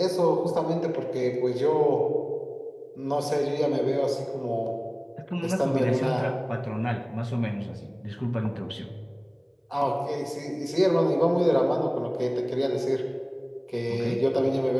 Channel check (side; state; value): both; identical; correlation 1.00